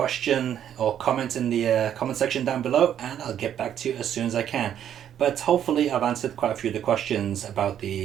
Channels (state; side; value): quieter; left; 9.9 dB